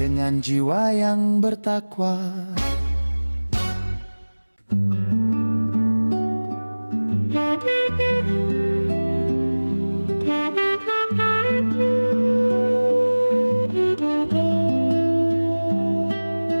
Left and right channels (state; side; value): inverted; both; correlation -1.00